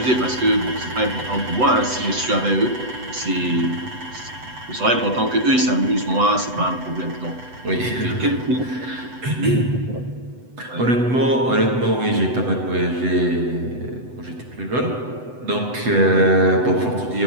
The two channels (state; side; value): late; left; 8.0 ms